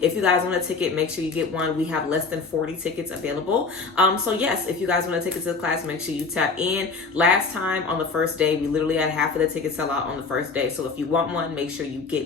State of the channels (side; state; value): right; quieter; 4.4 dB